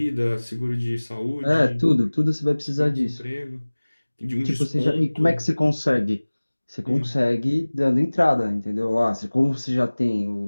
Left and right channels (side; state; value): both; inverted; correlation -1.00